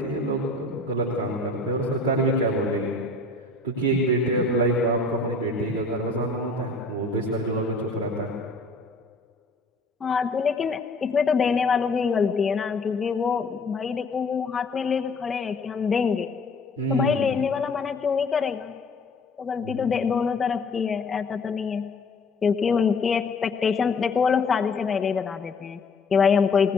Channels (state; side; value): quieter; right; 3.4 dB